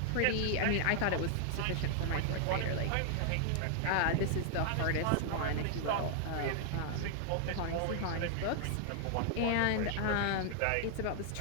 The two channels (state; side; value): different; both; correlation -0.01